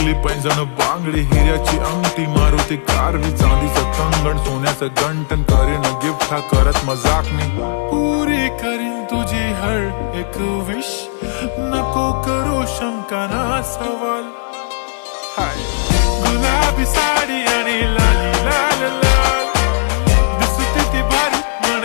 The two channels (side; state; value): right; silent; 57 dB below the other